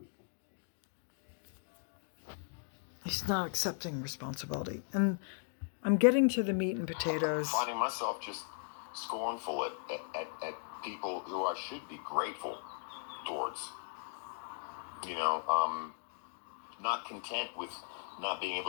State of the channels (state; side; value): silent; right; digital silence